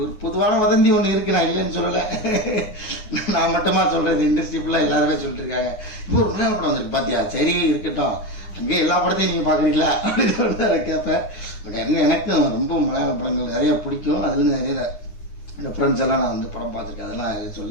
பொதுவான வதந்தி ஒன்று இருக்கு, நான் இல்லைன்னு சொல்லலை. நான் மட்டுமா சொல்கிறது, இண்டஸ்ட்ரி ஃபுல்லாக எல்லாருமே சொல்லிட்டு இருக்காங்க. இப்போ ஒரு மலையாள படம் வந்துருக்கு பார்த்தியா, சரி இருக்கட்டும், அங்கே எல்லா படத்தையும் நீங்கள் பார்க்குறீங்களா அப்படின்னு சொல்லிட்டு அதை கேட்பேன். பட் எனக்கும் ரொம்ப மலையாள படங்கள் நிறைய பிடிக்கும். அதுலேருந்து நிறைய ரெஃபரன்ஸ் எல்லாம் நான் வந்து படம் பார்த்துருக்கேன், அதெல்லாம்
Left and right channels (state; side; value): late; right; 9.8 ms